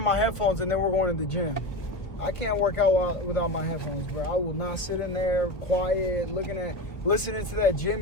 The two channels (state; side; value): late; right; 1.2 ms